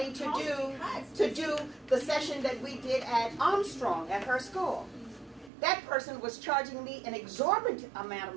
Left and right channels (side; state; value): left; drops out; at 5.5 s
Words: to do the session that we did at Armstrong at her school. that person was charging me an exorbitant amount of